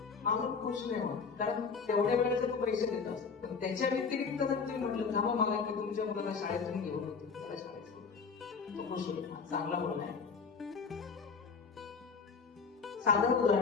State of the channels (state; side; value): quieter; right; 5.4 dB